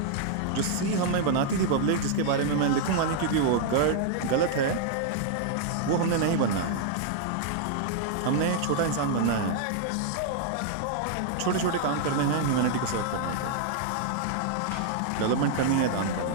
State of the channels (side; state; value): both; different; correlation -0.01